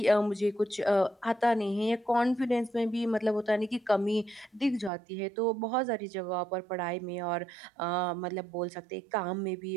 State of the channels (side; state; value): left; drops out; at 4.9 s